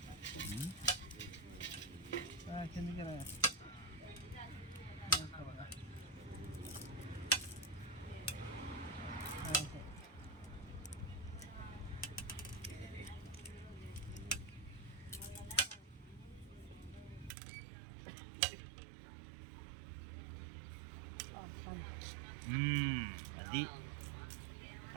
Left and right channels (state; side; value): drops out; left; at 17.3 s